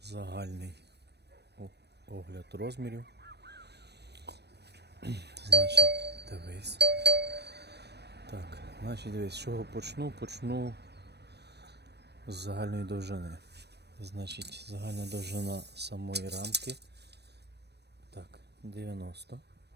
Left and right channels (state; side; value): late; left; 0.49 ms